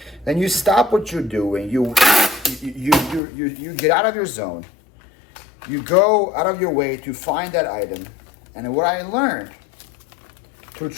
Then you stop what you're doing. You get out of your zone. You go out of your way to find that item. And what I learned through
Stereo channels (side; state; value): right; drops out; at 3.2 s